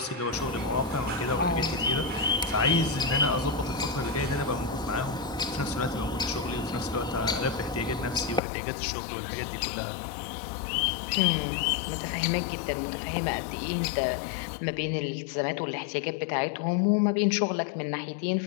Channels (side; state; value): right; drops out; at 8.4 s